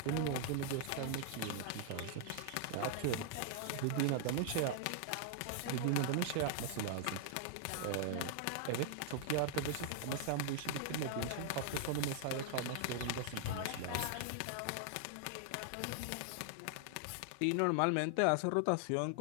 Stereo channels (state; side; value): different; both; correlation 0.00